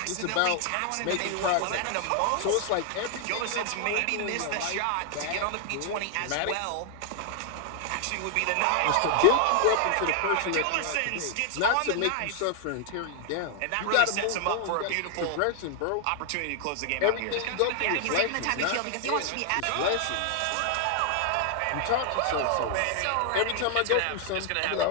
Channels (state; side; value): different; both; correlation 0.00